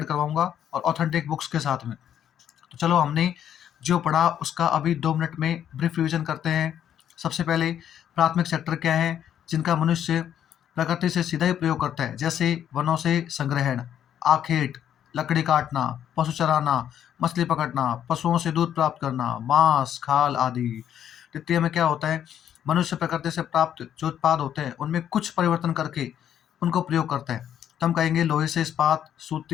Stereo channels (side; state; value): right; quieter; 9.9 dB